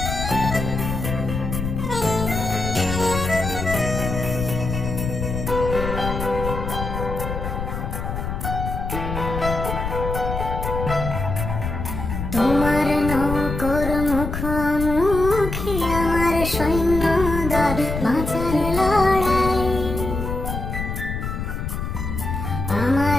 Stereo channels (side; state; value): left; noise; rumble, 4 dB below the sound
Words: তোমার নৌকোর মুখোমুখি আমার সৈন্যদল, বাঁচার লড়াই।